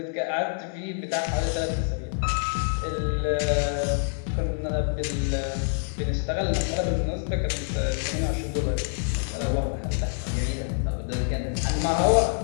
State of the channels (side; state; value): right; silent; 58 dB below the other